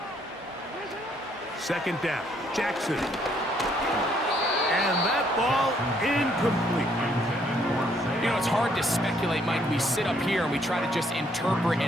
Second down, Jackson. And that ball incomplete. You know, it's hard to speculate, Mike. We sit up here and we try to just interpret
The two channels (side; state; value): both; normal; correlation 0.68